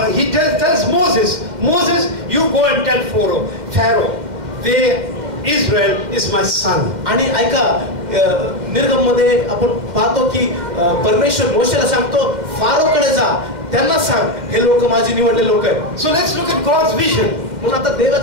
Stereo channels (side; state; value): left; late; 2.1 ms